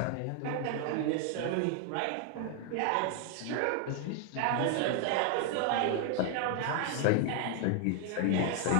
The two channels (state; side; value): different; both; correlation 0.00